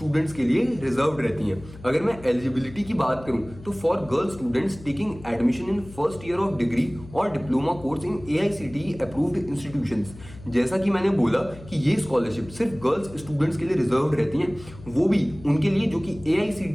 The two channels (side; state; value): left; noise; hum, 18 dB below the sound